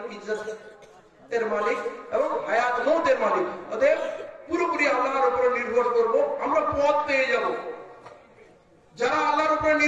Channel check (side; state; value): both; identical; correlation 1.00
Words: ইজ্জতের মালিক এবং হায়াত মৌতের মালিক। অতএব পুরোপুরি আল্লাহর উপরে নির্ভর করব, আমরা পথ পেয়ে যাব। যারা আল্লাহর উপরে